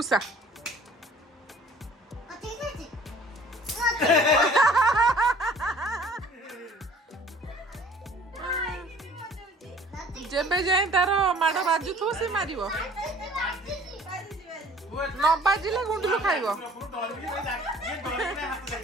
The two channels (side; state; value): both; normal; correlation 0.52